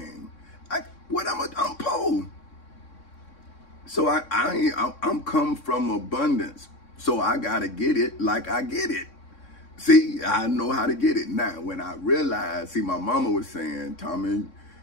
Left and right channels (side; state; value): right; late; 3.6 ms